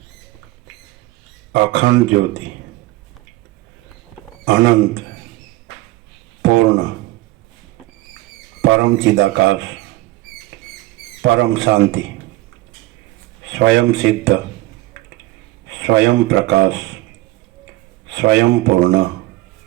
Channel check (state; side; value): quieter; left; 18.5 dB